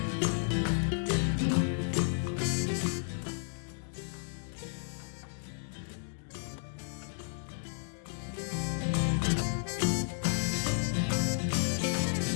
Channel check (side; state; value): right; silent; digital silence